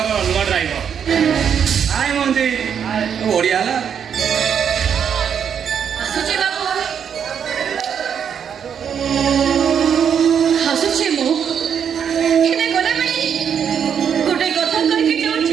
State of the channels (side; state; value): left; quieter; 7.9 dB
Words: ନୂଆ ଡ୍ରାଇଭର। ଆଏ ମଞ୍ଜି, ଓଡ଼ିଆ ହେଲା। ଆସୁଛି ବାବୁ, ଆସୁଛି ମୁଁ। ହେଲେ ଗଲାବେଳେ ଗୋଟେ କଥା କହିକି